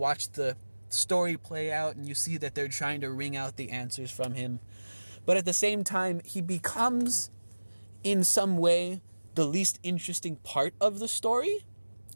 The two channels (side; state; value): both; inverted; correlation -1.00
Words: the story play out and you see that they're trying to wring out the answers from him. But at the same time, he becomes, in some way, the least interesting part of the story